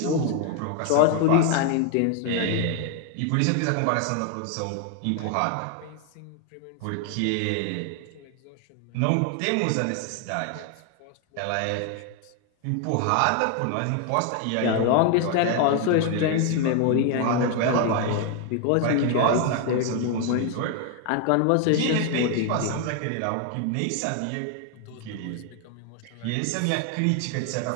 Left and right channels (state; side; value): different; both; correlation 0.01